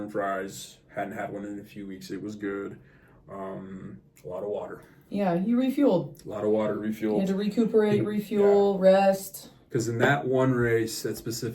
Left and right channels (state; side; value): identical; both; correlation 1.00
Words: and fries. Hadn't had one in a few weeks. It was good. A lot of water. Yeah, you refueled. A lot of water, refueled. You had to recuperate, refuel, rest. Because in that one race, that